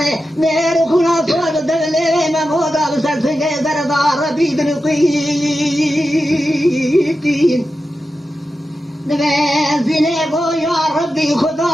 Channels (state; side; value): normal; both; correlation 0.91